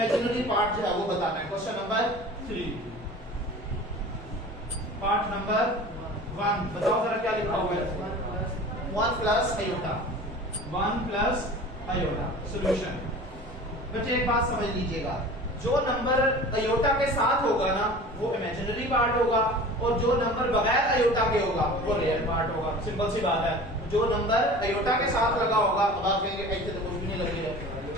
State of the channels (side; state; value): both; normal; correlation 0.39